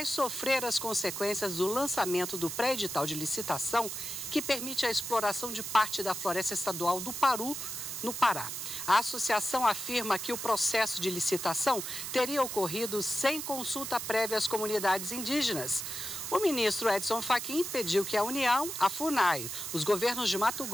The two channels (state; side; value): noise; right; hiss, 6 dB below the sound